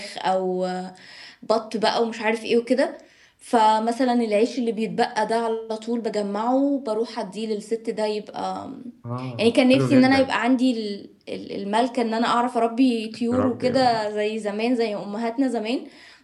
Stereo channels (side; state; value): both; identical; correlation 1.00